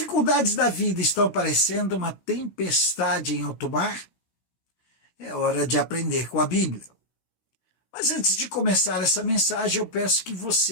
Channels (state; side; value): late; right; 16 ms